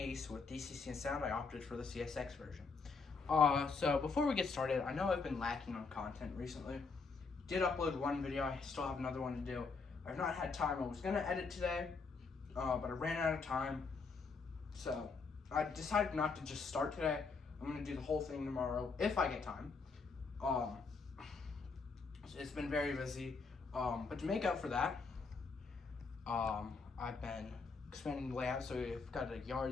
with DCC and sound. I opted for the CSX version. So before we get started, I know I've been lacking on content recently. Did upload one video, I still have another one to do. I've not had time. I was going to edit today, but I ran out of time. So I decided not to just start today. I'm going to do the whole thing tomorrow if I get time. It's been very busy. But to make up for that, I've been expanding the layout, so we've got a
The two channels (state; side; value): quieter; right; 4.6 dB